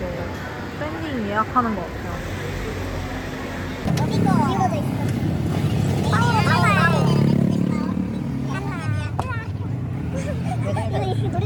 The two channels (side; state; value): both; identical; correlation 1.00